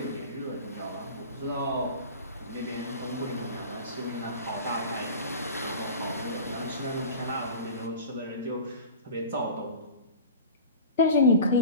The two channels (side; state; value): both; inverted; correlation -0.35